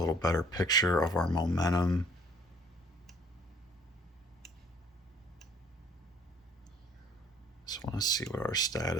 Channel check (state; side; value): normal; both; correlation 0.58